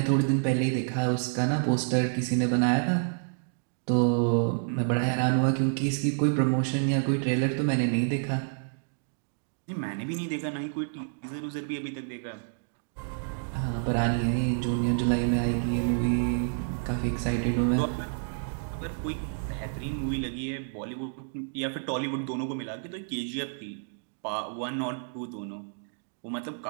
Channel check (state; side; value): silent; left; digital silence